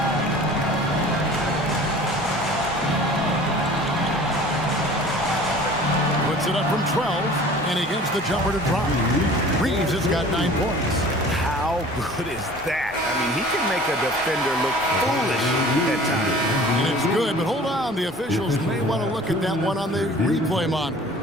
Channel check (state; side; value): normal; both; correlation 0.45